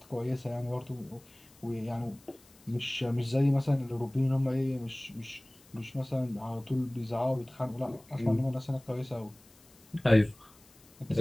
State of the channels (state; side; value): noise; left; hiss, 27 dB below the sound